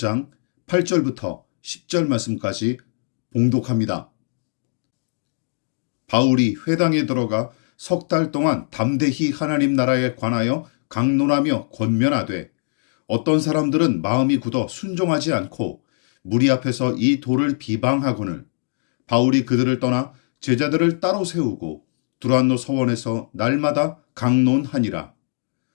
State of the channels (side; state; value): right; silent; digital silence